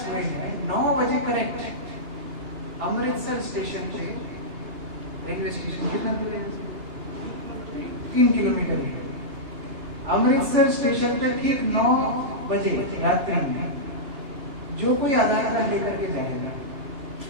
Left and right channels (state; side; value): late; left; 2.9 ms